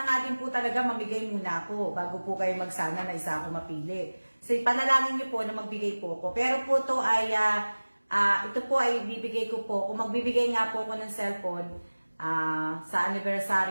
nga din po talaga mamigay muna ako bago po kayo magsana na isa ako mapili. So, panalangin niyo po na magbigay po ako. Pero po to ay, ito po ay bibigay ko po. Kung magbibigay nga po ako ng cellphone, sa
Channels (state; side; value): inverted; both; correlation -1.00